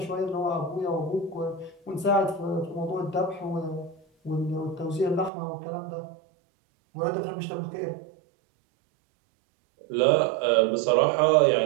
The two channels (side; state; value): left; drops out; at 5.3 s